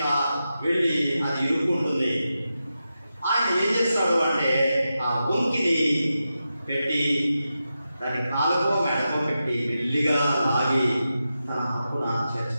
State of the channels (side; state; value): both; inverted; correlation -0.90